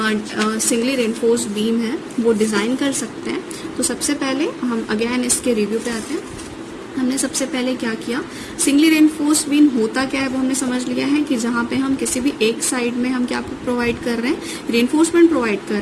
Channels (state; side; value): identical; both; correlation 1.00